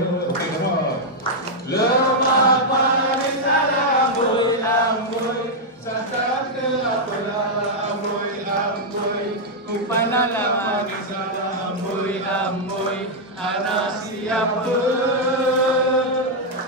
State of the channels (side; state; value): both; normal; correlation -0.03